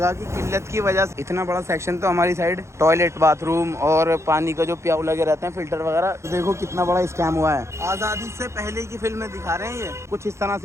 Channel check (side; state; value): left; late; 0.13 ms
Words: की किल्लत की वजह से इतना बड़ा सेक्शन तो हमारी साइड टॉयलेट, बाथरूम और पानी का जो प्याऊ लगे रहते हैं, फिल्टर वगैरह। तो देखो कितना बड़ा स्कैम हुआ है। आज़ादी से पहले की फिल्में दिखा रहे हैं ये। कुछ इस तरह